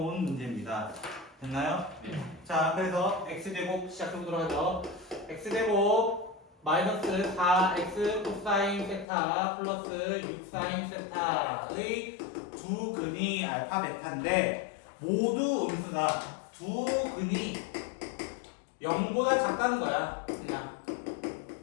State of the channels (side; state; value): right; drops out; at 9.1 s